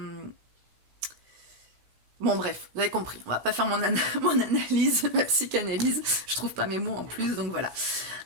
Bon bref, vous avez compris, on va pas faire mon analyse, ma psychanalyse, je trouve pas mes mots en plus, donc voilà.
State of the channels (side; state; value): left; late; 16 ms